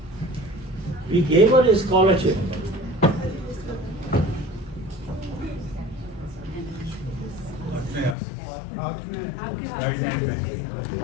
We gave her a scholarship.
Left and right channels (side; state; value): right; drops out; at 8.2 s